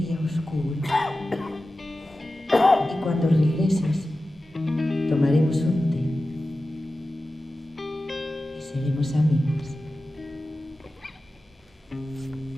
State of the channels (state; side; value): normal; both; correlation 0.94